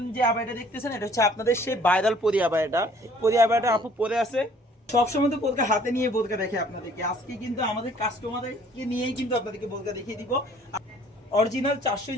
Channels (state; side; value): normal; both; correlation 0.56